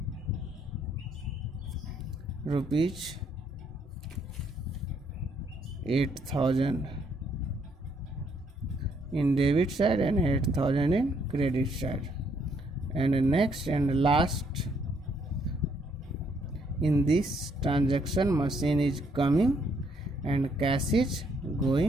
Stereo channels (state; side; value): normal; both; correlation 0.70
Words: rupees 8,000 in debit side and 8,000 in credit side. And next and last, in this transaction machine is coming and cash is